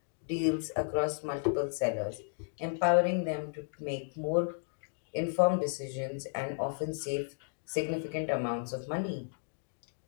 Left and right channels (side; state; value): right; silent; digital silence